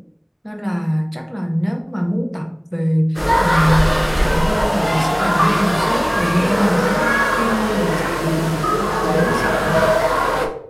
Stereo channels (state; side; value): identical; both; correlation 1.00